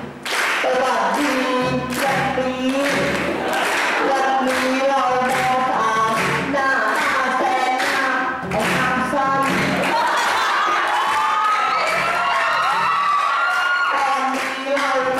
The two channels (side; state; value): both; identical; correlation 1.00